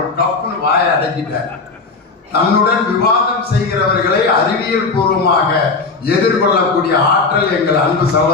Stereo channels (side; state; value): right; quieter; 4.1 dB